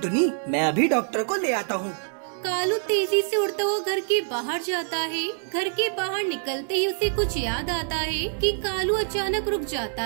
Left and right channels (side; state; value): left; silent; digital silence